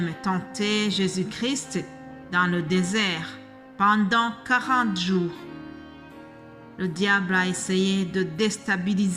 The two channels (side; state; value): both; identical; correlation 1.00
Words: tenter Jésus-Christ dans le désert pendant 40 jours. Le diable a essayé de